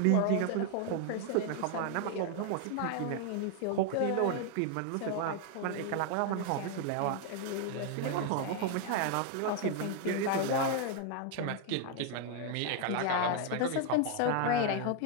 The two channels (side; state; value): both; different; correlation 0.00